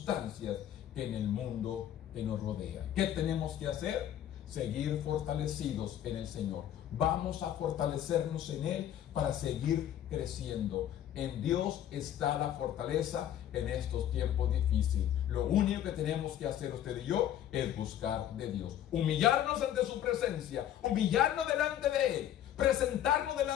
en el mundo que nos rodea. ¿Qué tenemos que hacer? Seguir fortalecidos en el Señor. Vamos a fortalecernos en Él para seguir creciendo. En Dios está la fortaleza en estos tiempos difíciles. Lo único que tenemos que hacer usted y yo es buscar de Dios. Humillarnos ante su presencia, humillarnos delante de Él, presentarnos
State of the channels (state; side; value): quieter; right; 11.1 dB